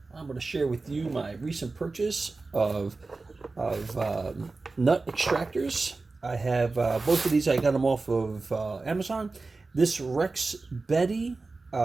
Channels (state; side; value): quieter; left; 3.7 dB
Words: I'm going to share with you my recent purchase of nut extractors. I have both of these. I got them off of Amazon. This Rex Betty